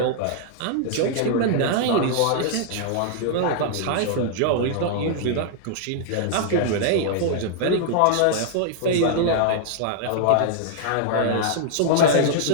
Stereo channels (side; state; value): both; different; correlation -0.01